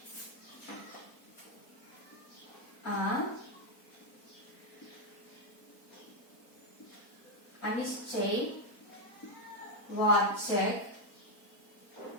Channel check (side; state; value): right; late; 4.2 ms